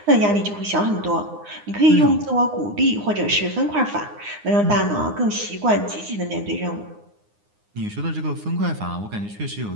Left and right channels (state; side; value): late; left; 9.7 ms